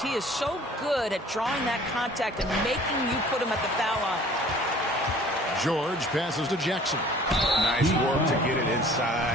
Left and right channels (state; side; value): normal; both; correlation 0.50